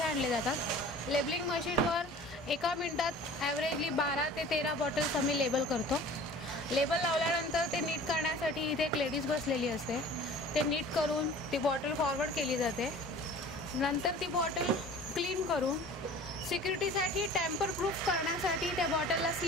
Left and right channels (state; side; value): normal; both; correlation 0.44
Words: आणले जातात। लेबलिंग मशीनवर एका मिनिटात ॲव्हरेजली 12 ते 13 बॉटल्स आम्ही लेबल करतो। लेबल लावल्यानंतर ते नीट करण्यासाठी इथे एक लेडीज बसलेली असते, ते नीट करून ती बॉटल फॉरवर्ड केली जाते। नंतर ती बॉटल क्लीन करून सिक्युरिटीसाठी टॅम्पर प्रूफ करण्यासाठी त्या बॉटलला